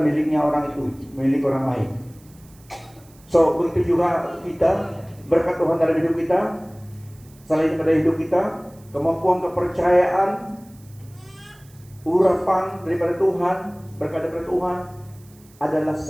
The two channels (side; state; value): right; noise; hiss, 28 dB below the sound